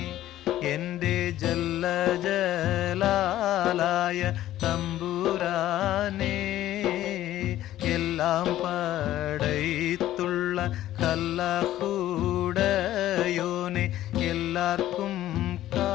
എൻ്റെ ജല്ല ജലാലായ തമ്പുരാനേ എല്ലാം പടൈത്തുള്ള അല്ലാഹുടയോനെ എല്ലാവർക്കും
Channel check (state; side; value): quieter; right; 13.7 dB